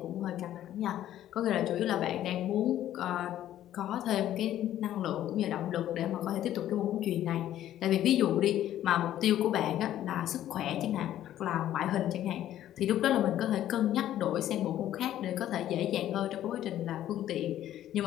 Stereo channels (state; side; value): quieter; right; 12.3 dB